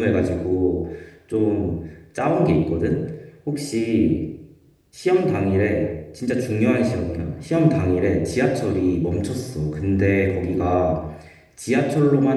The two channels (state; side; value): identical; both; correlation 1.00